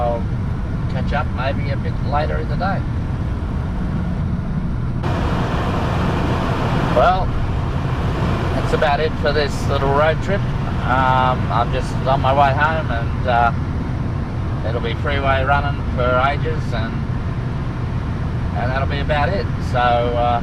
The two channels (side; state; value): both; identical; correlation 1.00